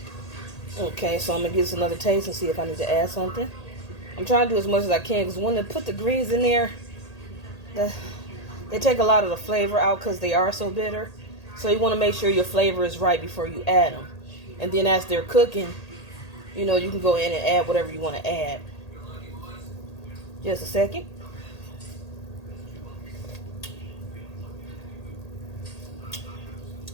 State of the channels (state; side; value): late; right; 1.8 ms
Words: Okay, so I'm going to give this another taste and see if I need to add something. I'm trying to do as much as I can because when they put the greens in there, they take a lot of the flavor out because they are so bitter. So you want to make sure your flavor is right before you add them. And then as they're cooking, you know, you can go in and add whatever you want to add. Just a second.